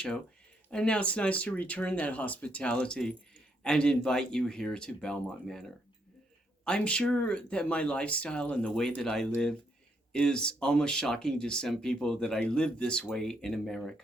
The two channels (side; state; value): both; normal; correlation 0.75